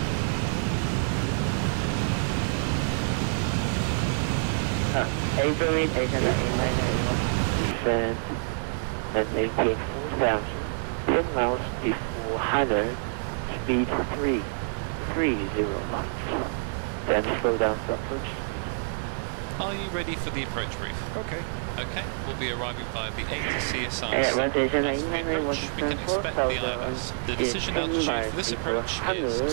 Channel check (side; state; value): left; silent; digital silence